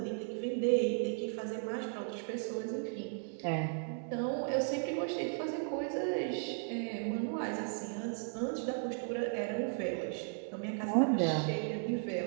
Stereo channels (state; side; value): silent; left; 54 dB below the other